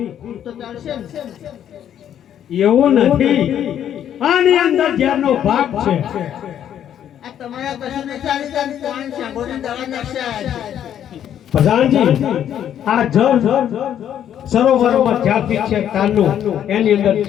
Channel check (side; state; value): right; quieter; 10.1 dB